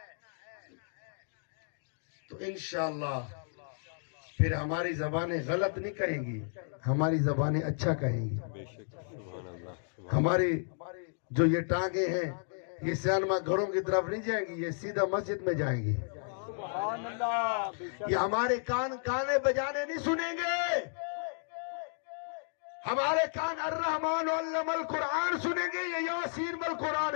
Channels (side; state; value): right; silent; digital silence